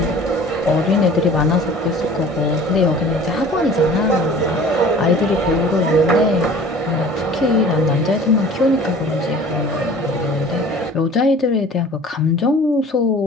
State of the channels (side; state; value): both; normal; correlation 0.46